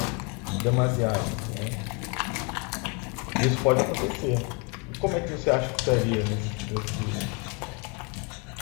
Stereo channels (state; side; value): quieter; right; 33.4 dB